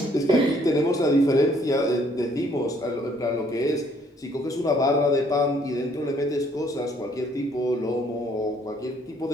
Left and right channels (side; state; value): both; normal; correlation 0.64